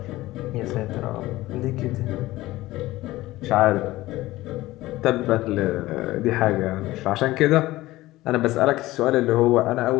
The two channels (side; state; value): right; quieter; 17.5 dB